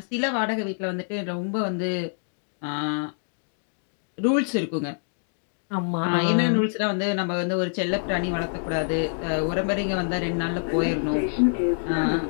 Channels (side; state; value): right; silent; digital silence